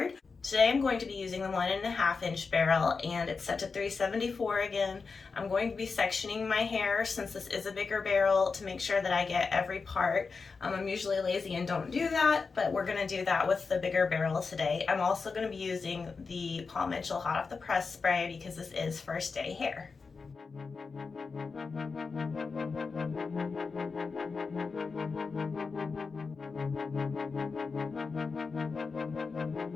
Today I'm going to be using the 1.5-inch barrel, and it's set to 374 again. I'm going to be sectioning my hair since this is a bigger barrel to make sure that I get every part. I'm usually lazy and don't do that, but we're going to do that with the bigger barrel today. I'm also going to be using the Paul Mitchell Hot Off the Press spray because this is first day hair.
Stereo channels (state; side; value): quieter; right; 4.7 dB